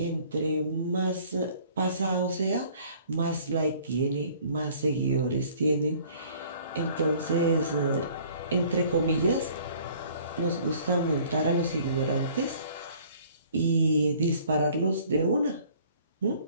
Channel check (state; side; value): inverted; both; correlation -0.54